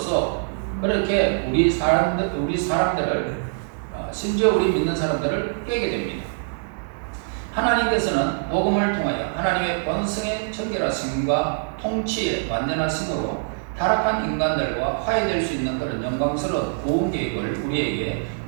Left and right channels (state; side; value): silent; left; digital silence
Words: 그렇게 우리 사람들을 심지어 우리 믿는 사람들을 깨게 됩니다. 하나님께서는 복음을 통하여 하나님의 번성의 정결하심과 통치의 완전하심으로 타락한 인간들과 화해될 수 있는 그런 영광스러운 구원 계획을 우리에게